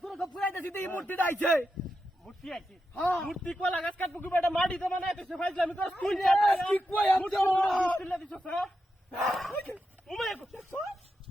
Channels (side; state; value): both; normal; correlation 0.87